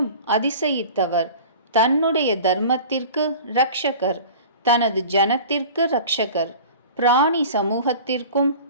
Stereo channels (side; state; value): both; inverted; correlation -0.40